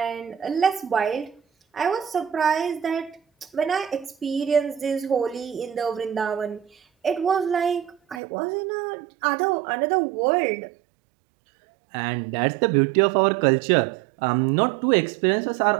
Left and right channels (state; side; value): drops out; left; at 8.2 s